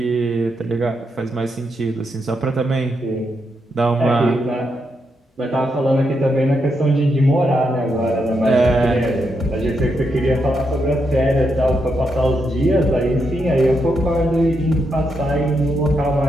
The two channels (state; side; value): normal; both; correlation 0.82